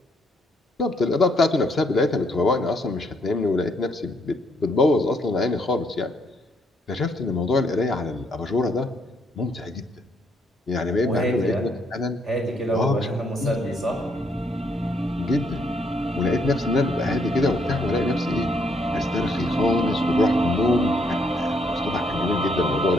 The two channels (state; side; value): normal; both; correlation 0.71